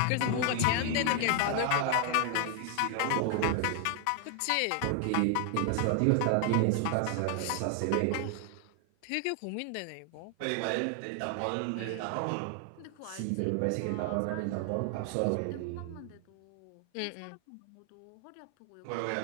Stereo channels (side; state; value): both; different; correlation 0.00